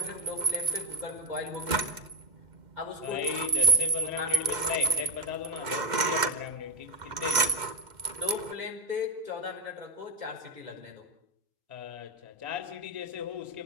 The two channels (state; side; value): late; left; 2.1 ms